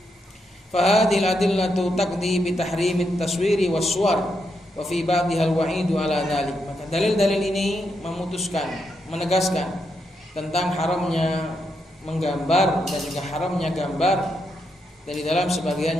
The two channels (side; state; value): both; normal; correlation 0.82